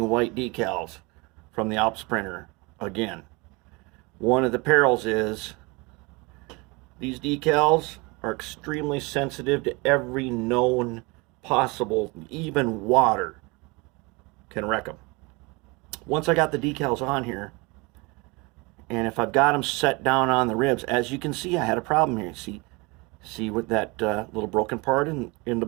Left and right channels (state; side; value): quieter; left; 26.6 dB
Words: white decals from the Alps printer again. One of the perils is these decals are extremely sensitive to every known possible, even water can wreck them. Once I got the decals on here, and if I've got them set down on the ribs, as you can see, I had a problem here. See with that little broken part in the